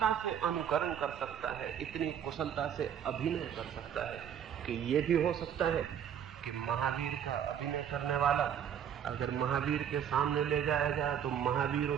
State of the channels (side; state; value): left; quieter; 8.9 dB